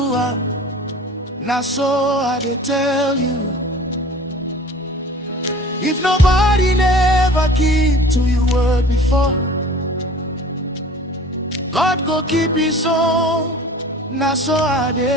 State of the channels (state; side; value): normal; both; correlation 0.44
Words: it, now so I dey tell you. If nobody never keep to your word before, God go keep his own, now so I